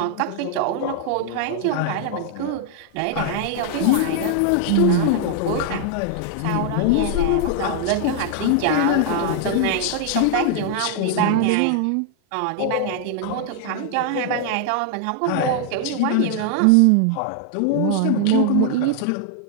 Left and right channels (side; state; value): both; different; correlation 0.00